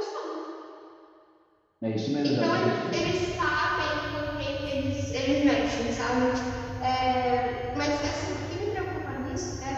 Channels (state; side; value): identical; both; correlation 1.00